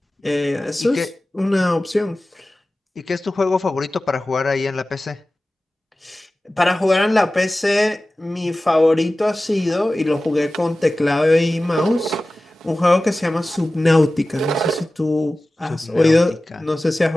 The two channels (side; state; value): both; normal; correlation 0.96